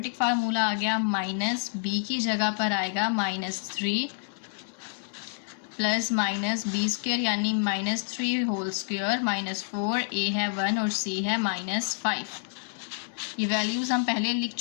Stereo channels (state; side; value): silent; right; 59 dB below the other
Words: फार्मूला आ गया। -b की जगह पर आएगा -3 + -b² यानी -3 होल स्क्वायर -4a है 1 और c है -5। ये वैल्यूज़ हम पहले लिख